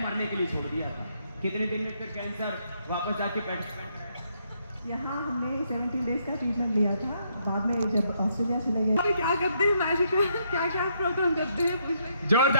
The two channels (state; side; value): inverted; both; correlation -0.74